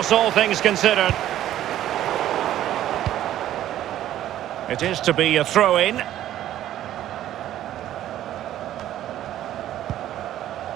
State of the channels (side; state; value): left; quieter; 12.5 dB